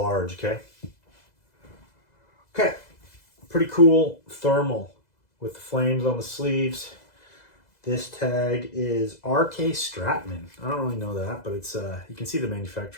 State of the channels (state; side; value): late; right; 2.0 ms